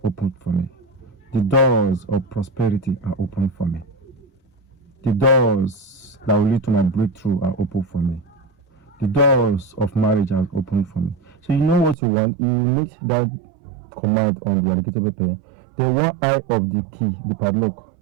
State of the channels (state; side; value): drops out; left; at 12.0 s